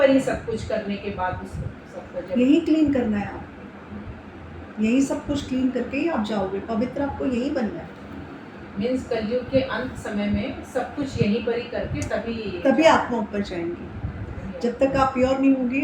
ही सब कुछ करने के बाद उस सबको जब यही क्लीन करना है। आप यही सब कुछ क्लीन करके ही आप जाओगे, पवित्र आपको यही बनना है। मीन्स कलयुग के अंत समय में सब कुछ यहीं पर ही करके तभी आत्मा ऊपर जाएंगी। जब तक आप प्योर नहीं होंगे,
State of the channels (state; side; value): identical; both; correlation 1.00